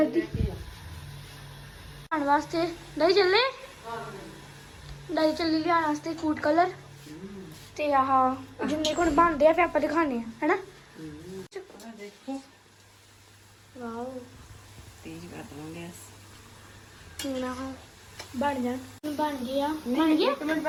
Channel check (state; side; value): identical; both; correlation 1.00